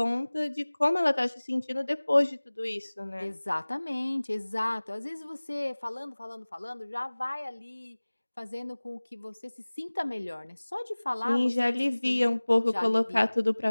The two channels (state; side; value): inverted; both; correlation -1.00